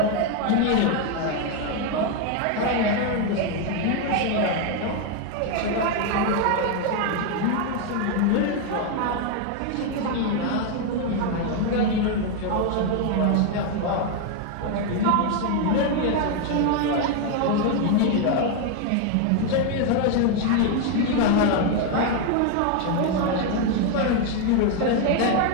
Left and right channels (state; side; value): different; both; correlation 0.01